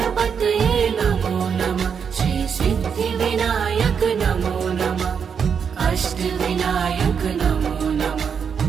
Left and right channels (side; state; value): left; quieter; 6.8 dB